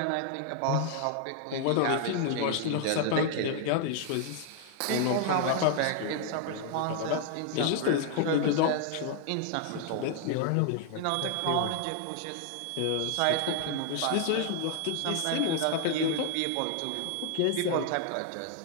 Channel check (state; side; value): different; both; correlation 0.00